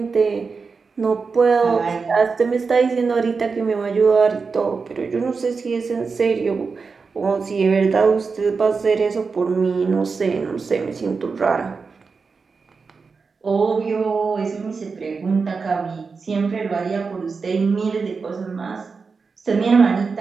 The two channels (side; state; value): left; quieter; 4.8 dB